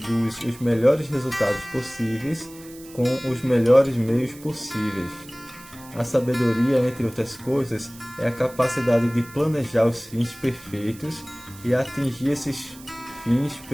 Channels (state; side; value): noise; right; hiss, 20 dB below the sound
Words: os melhores resultados possíveis com os melhores meios possíveis. A sabedoria, entre outras coisas, é a capacidade de planejar os fins perfeitos e atingir esses fins